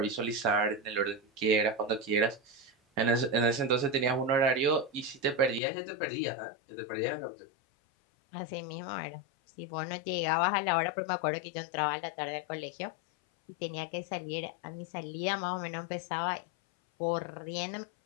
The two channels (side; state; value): right; drops out; at 5.6 s